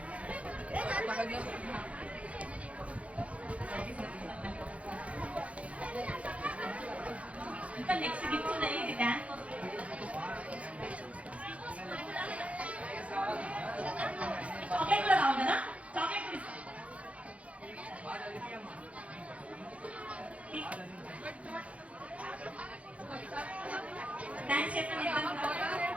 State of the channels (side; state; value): left; late; 0.064 ms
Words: ఇంకా నెక్స్ట్ గిఫ్ట్ ఉన్నాయి, ఇది డాన్స్ చాక్లెట్ కూడా కావాలి కదా, చాక్లెట్ కూడా ఇస్తాం. థ్యాంక్స్ చెప్పండి.